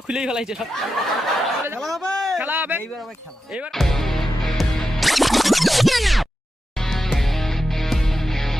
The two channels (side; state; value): both; normal; correlation 0.90